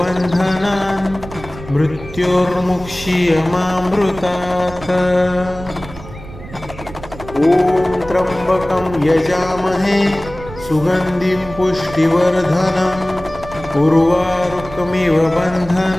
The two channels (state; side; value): noise; right; rumble, 15 dB below the sound